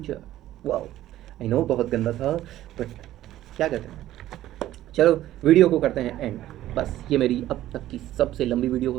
Wow, I know बहुत गंदा था, but क्या कहते हैं। चलो video को करते हैं एंड। बस ये मेरी अब तक की सबसे लंबी वीडियो हो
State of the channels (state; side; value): quieter; left; 13.8 dB